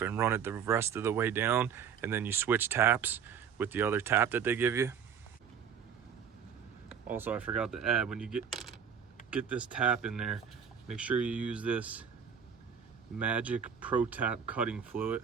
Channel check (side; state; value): left; quieter; 7.5 dB